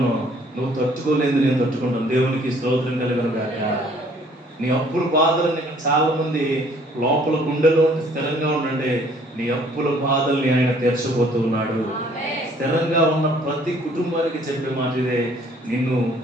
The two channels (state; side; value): normal; both; correlation 0.59